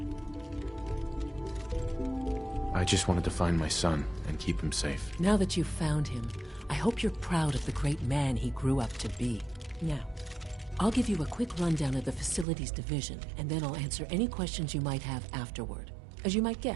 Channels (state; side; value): drops out; left; at 12.5 s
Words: I just wanted to find my son and keep him safe. Now that you've found him, I hope you're proud of the great man he grew up to be. Now, I'll give you a quick rundown of the Facilities Division, and then I'll answer any questions you might have afterward. As you might